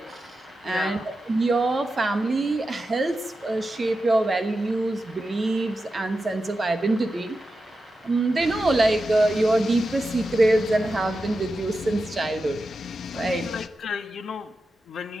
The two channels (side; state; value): both; normal; correlation 0.91